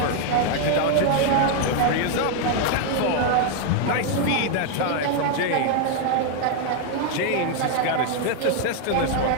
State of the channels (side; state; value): both; different; correlation 0.00